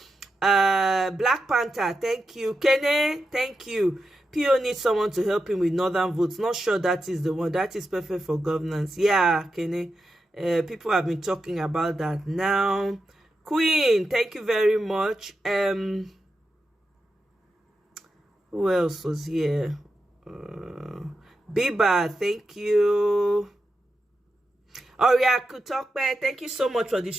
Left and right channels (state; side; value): normal; both; correlation 0.88